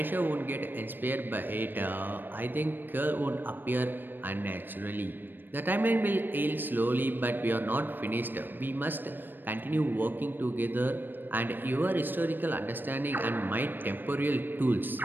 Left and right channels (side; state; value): left; late; 0.093 ms